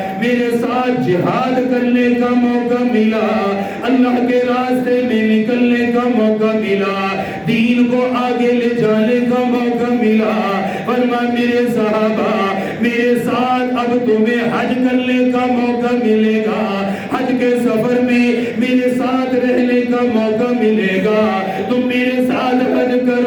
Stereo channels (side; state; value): both; identical; correlation 1.00